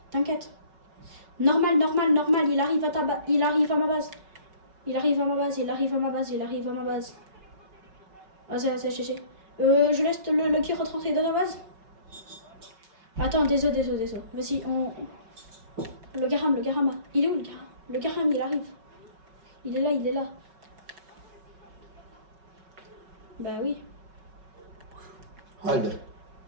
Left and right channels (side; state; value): left; late; 5.3 ms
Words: T'inquiète. Normal. Il arrive à ta base. Il arrive à ma base. Il arrive à ma base. Vas-y, GG. Je laisse le qui rentrer dans ta base. Attends, désolé. Vas-y, Le Garam. Il est où le Garam? Le Garam, il arrive. Il est là. Bah oui. Haydi.